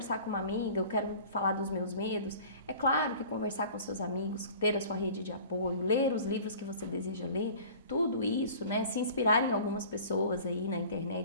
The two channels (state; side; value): inverted; both; correlation -0.44